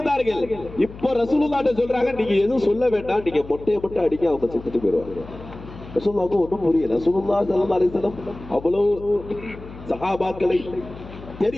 இப்போ ரசூலுல்லாஹ்ட்ட சொல்றாங்க, நீங்க எதுவும் சொல்ல வேண்டாம், நீங்க மொட்டையை மட்டும் அடிக்க, அவங்க செத்துட்டு போயிடுவாங்க. ரசூலுல்லாஹ்வுக்கு ஒன்றும் புரியல. ரசூலுல்லாஹ் ஸல்லல்லாஹு அலைஹி வஸல்லம் அவ்வளவு சஹாபாக்களை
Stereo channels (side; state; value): left; noise; hum, 15 dB below the sound